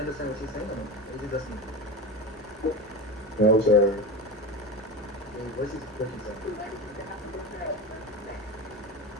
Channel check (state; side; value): normal; both; correlation 0.25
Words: what she's saying or no? Or is it just me? No, sir. Your voice is breaking, sir.